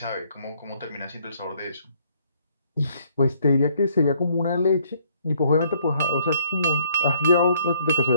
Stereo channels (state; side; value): inverted; both; correlation -0.66